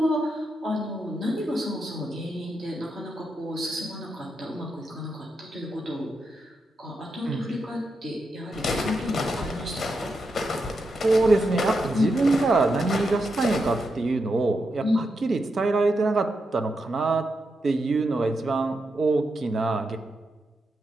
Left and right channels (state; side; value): normal; both; correlation 0.85